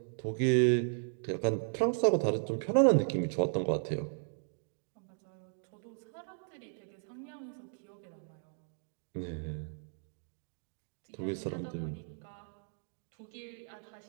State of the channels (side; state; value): left; silent; digital silence